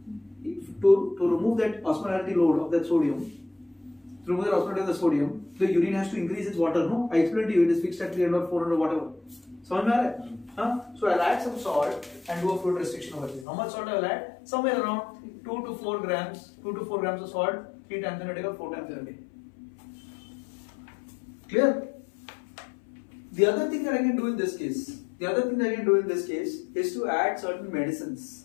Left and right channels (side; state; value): right; drops out; at 13.5 s